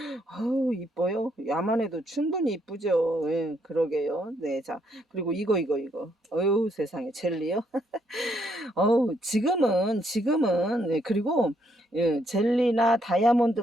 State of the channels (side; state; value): both; normal; correlation 0.73